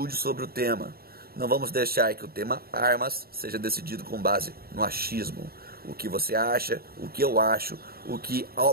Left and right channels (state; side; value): late; left; 0.44 ms